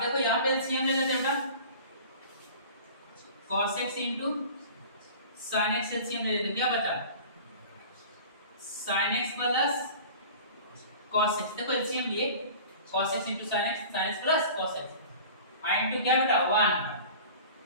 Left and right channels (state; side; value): inverted; both; correlation -0.40